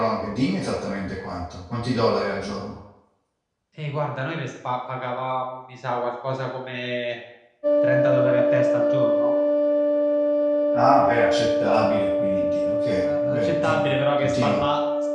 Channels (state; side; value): identical; both; correlation 1.00